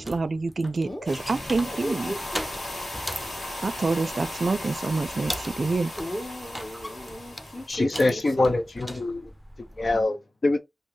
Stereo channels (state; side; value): normal; both; correlation 0.94